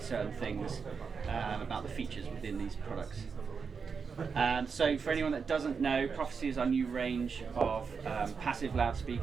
certain things about the features within these products. So for anyone that doesn't know, Prophecy is our new range of passive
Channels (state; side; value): quieter; left; 5.6 dB